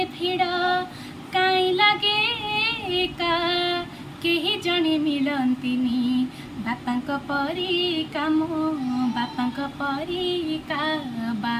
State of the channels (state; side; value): identical; both; correlation 1.00